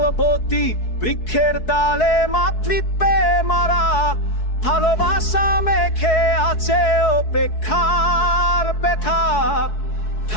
বৃক্ষের ডালে মাতৃত্বে মারা ভালোবাসা মেখে আছে অপেক্ষার ব্যথা।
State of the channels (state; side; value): late; right; 4.7 ms